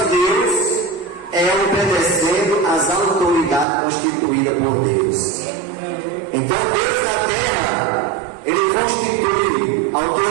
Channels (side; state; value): left; drops out; at 3.7 s